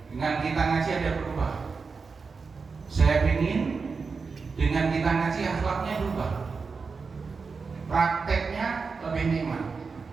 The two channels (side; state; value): left; quieter; 4.8 dB